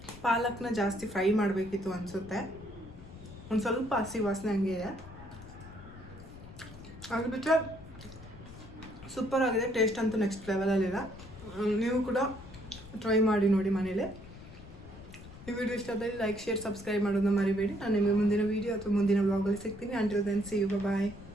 ಪಾಲಕ್ನ ಜಾಸ್ತಿ ಫ್ರೈ ಮಾಡಬೇಕಿತ್ತು ಅನಿಸುತ್ತೆ. ಒಂದು ಸ್ವಲ್ಪ ಹಸಿ ವಾಸನೆ ಹಂಗೆ ಇದೆ. ಅದು ಬಿಟ್ಟರೆ ಸೂಪರ್ ಆಗಿದೆ. ಟೇಸ್ಟ್ ಅಂತೂ ನೆಕ್ಸ್ಟ್ ಲೆವೆಲಲ್ಲಿದೆ. ನೀವು ಕೂಡ ಟ್ರೈ ಮಾಡಿ ನೋಡಿ ಮನೇಲಿ. ಈ ವಿಡಿಯೋ ಇಷ್ಟ ಆದರೆ ಲೈಕ್, ಶೇರ್, ಸಬ್ಸ್ಕ್ರೈಬ್ ಮಾಡೋದನ್ನ ಮರಿಬೇಡಿ. ನಾನು ನಿಮಗೆ ಮುಂದಿನ ವೀಡಿಯೋ ಅಥವಾ ಮುಂದಿನ ವ್ಲಾಗಲ್ಲಿ ಸಿಗ್ತೀನಿ. Until then see you, bye.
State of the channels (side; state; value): left; noise; rumble, 17 dB below the sound